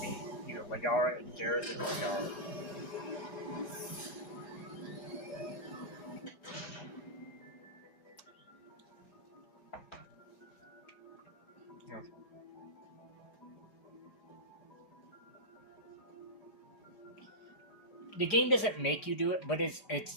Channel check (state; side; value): late; right; 4.9 ms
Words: either Liara and Garrus or Liara. Okay. The game doesn't make you do it, but it's